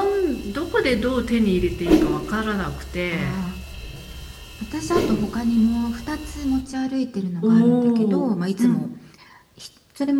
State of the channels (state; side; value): identical; both; correlation 1.00